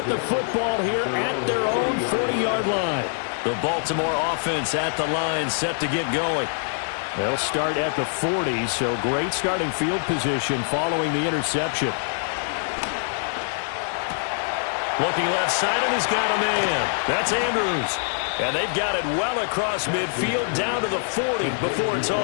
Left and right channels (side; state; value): right; silent; digital silence